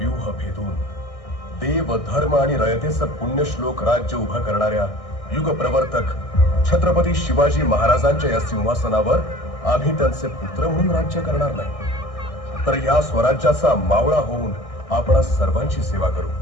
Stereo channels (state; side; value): late; right; 1.6 ms